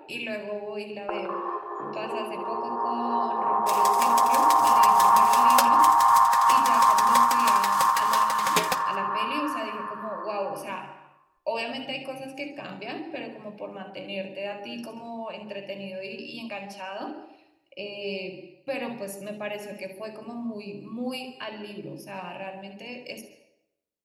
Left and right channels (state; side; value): identical; both; correlation 1.00